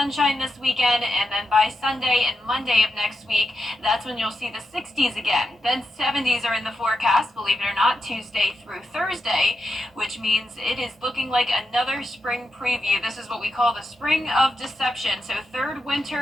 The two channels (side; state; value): both; normal; correlation 0.87